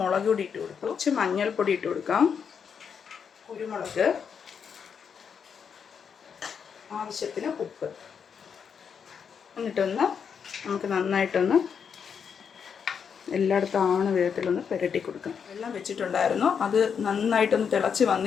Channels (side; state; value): right; quieter; 6.9 dB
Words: മുളക് പൊടി ഇട്ട് കൊടുക്കും, കുറച്ച് മഞ്ഞൾപ്പൊടി ഇട്ട് കൊടുക്കാം, കുരുമുളക്, ആവശ്യത്തിന് ഉപ്പ്, എന്നിട്ടൊന്ന് നമുക്ക് നന്നായിട്ടൊന്ന് എല്ലായിടത്തും ആവണ വിധത്തിലൊന്ന് പുരട്ടി കൊടുക്കണം. വെള്ളം വെച്ചിട്ടുണ്ടായിരുന്നു, അത് നന്നായിട്ടൊന്ന് തിളച്ച്